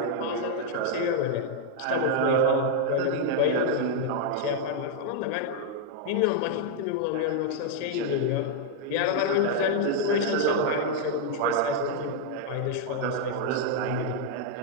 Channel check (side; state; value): both; different; correlation -0.01